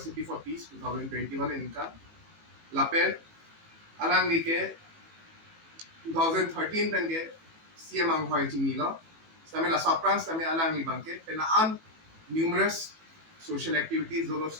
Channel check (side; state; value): left; late; 18 ms